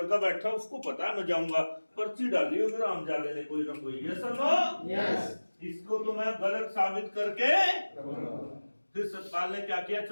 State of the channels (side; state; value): both; inverted; correlation -1.00